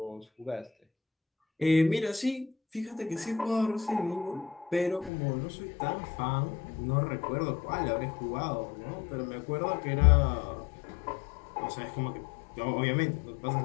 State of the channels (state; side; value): drops out; right; at 5.1 s